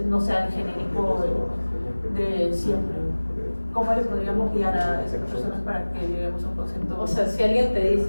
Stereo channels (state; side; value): inverted; both; correlation -1.00